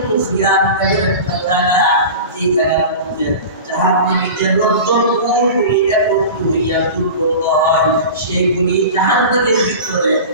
খিয়াম এর একটা জায়গা, যে জায়গার মধ্যে জাহান্নামীদের রক্তগুলি একত্র হইয়া দুর্গন্ধ হয়, সেগুলি জাহান্নামের ভিতরে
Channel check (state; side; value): inverted; both; correlation -0.32